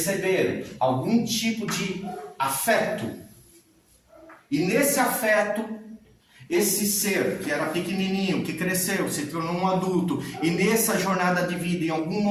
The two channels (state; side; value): identical; both; correlation 1.00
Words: algum tipo de afeto, e nesse afeto, esse ser que era pequenininho, que cresceu, se tornou um adulto, e nessa jornada de vida, em algum